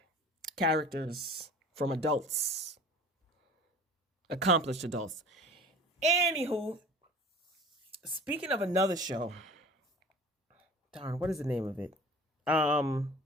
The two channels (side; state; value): both; normal; correlation 0.42